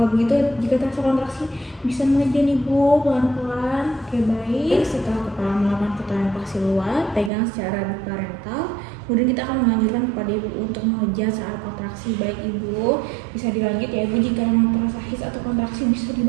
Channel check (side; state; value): left; drops out; at 7.3 s